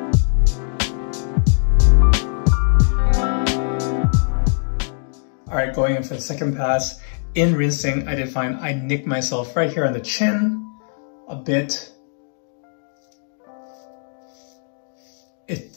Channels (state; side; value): silent; right; 65 dB below the other